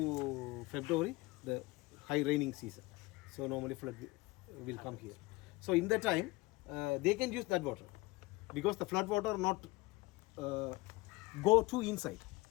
February the high raining season. So normally flood will come here. So in that time they can use that water because the flood water not go to inside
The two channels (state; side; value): quieter; right; 21.6 dB